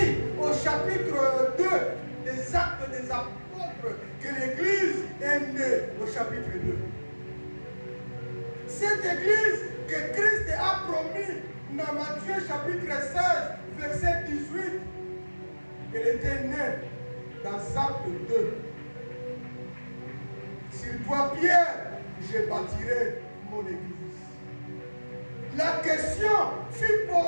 au chapitre 2 des Actes des Apôtres que l'Église est née au chapitre 2. Cette Église que Christ a promis dans Matthieu chapitre 16, verset 18, elle était née dans Actes 2. Sur toi, Pierre, je bâtirai mon Église. La question fut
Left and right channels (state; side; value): inverted; both; correlation -1.00